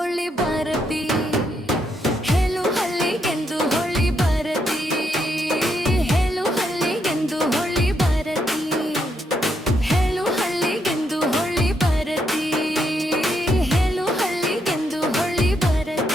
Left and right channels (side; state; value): both; normal; correlation 0.78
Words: ಬರತಿ ಹೇಳು ಹಳ್ಳಿಗೆಂದು ಹೊಳ್ಳಿ ಬರತಿ ಹೇಳು ಹಳ್ಳಿಗೆಂದು ಹೊಳ್ಳಿ ಬರತಿ ಹೇಳು ಹಳ್ಳಿಗೆಂದು ಹೊಳ್ಳಿ ಬರತಿ ಹೇಳು ಹಳ್ಳಿಗೆಂದು ಹೊಳ್ಳಿ